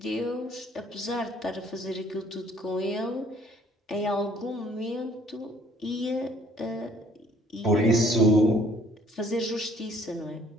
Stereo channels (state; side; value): normal; both; correlation 0.59